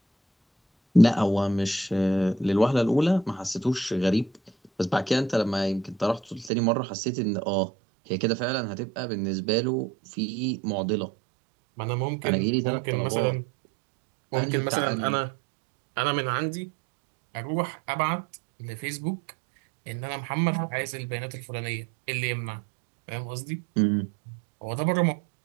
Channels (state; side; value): drops out; left; at 6.5 s